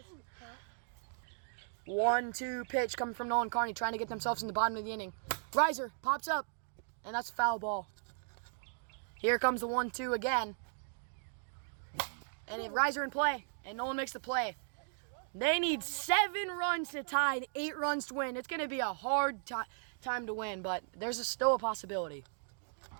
1-2 pitch coming from Nolan Carney, trying to get themselves in the bottom of the inning. Riser pops up, and that's a foul ball. Here comes the 1-2 again. And a riser in play, and Nolan makes the play. They need 7 runs to tie and 8 runs to win. It's going to be a hard time to win, but there's still a possibility.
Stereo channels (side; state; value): left; silent; digital silence